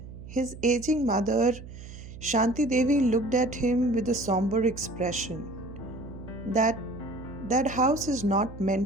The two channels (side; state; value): right; noise; hum, 14 dB below the sound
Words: His aging mother, Shanti Devi, looked at him with a somber expression. That house is not